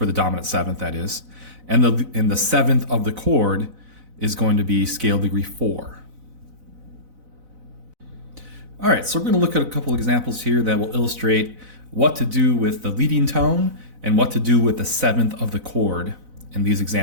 the dominant 7th that is, and the 7th of the chord is going to be scale degree 4. All right, so we're going to look at a couple examples here that will illustrate what to do with the leading tone and what to do with the 7th of the chord in these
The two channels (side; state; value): left; late; 4.0 ms